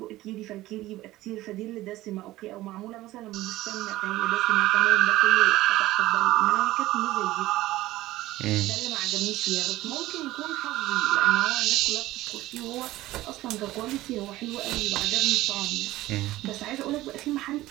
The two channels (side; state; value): left; quieter; 16.7 dB